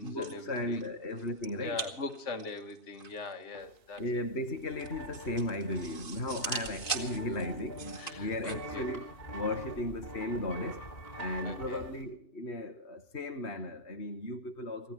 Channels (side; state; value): right; late; 2.5 ms